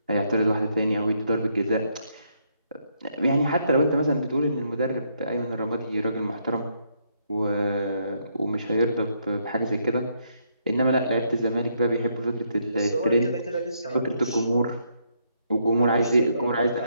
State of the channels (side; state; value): both; inverted; correlation -0.75